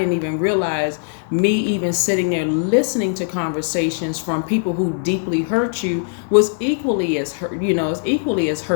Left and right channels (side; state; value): right; silent; digital silence